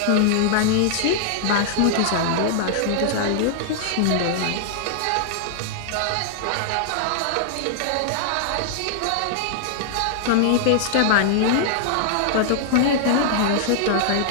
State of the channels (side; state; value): both; different; correlation -0.01